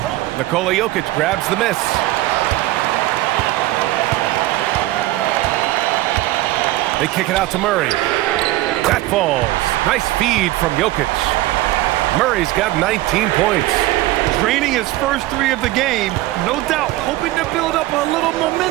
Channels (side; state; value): left; quieter; 17.1 dB